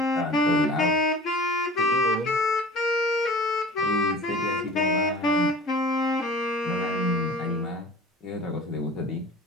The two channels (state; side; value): normal; both; correlation 0.42